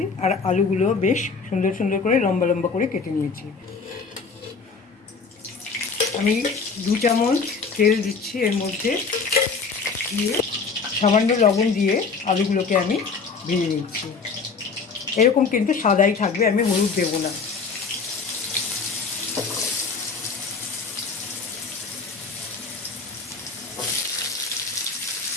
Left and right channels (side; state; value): right; quieter; 4.9 dB